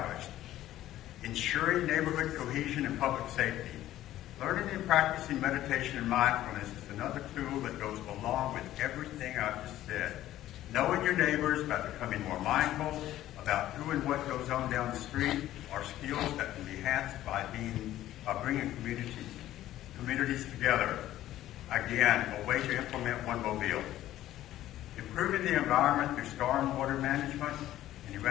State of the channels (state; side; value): quieter; right; 13.8 dB